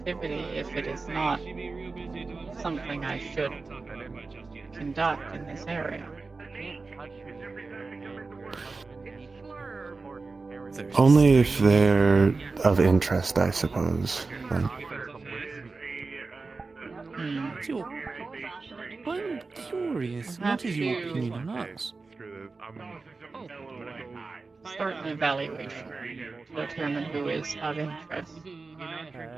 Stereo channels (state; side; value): quieter; left; 4.0 dB